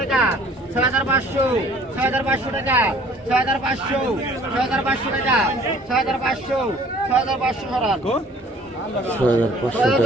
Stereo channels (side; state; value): both; normal; correlation 0.54